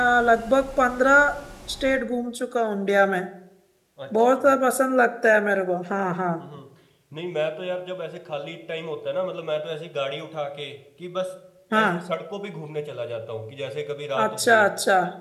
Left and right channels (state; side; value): identical; both; correlation 1.00